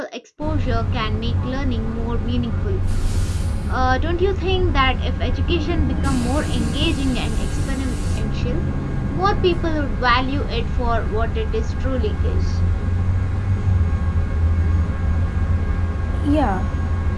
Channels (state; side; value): identical; both; correlation 1.00